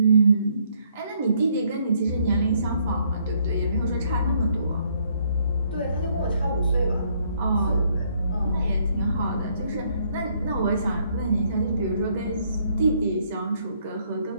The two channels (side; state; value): both; inverted; correlation -0.69